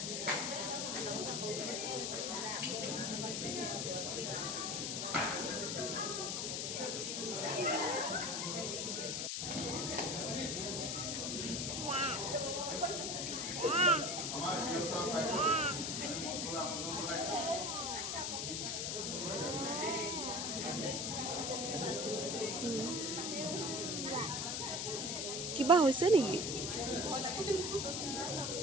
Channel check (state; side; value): noise; left; hiss, 1 dB below the sound